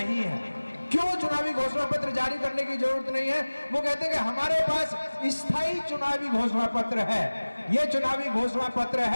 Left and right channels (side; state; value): both; inverted; correlation -1.00